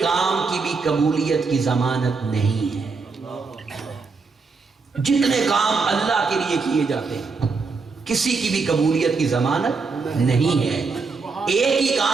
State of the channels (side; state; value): left; quieter; 4.5 dB